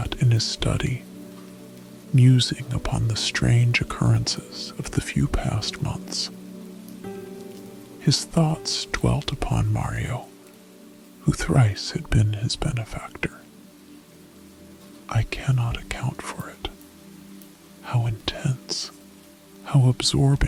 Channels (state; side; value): identical; both; correlation 1.00